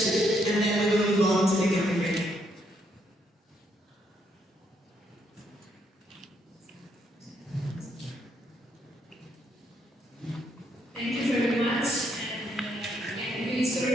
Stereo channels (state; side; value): normal; both; correlation 0.74